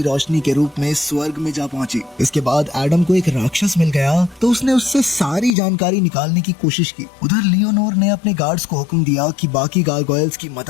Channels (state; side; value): drops out; right; at 5.5 s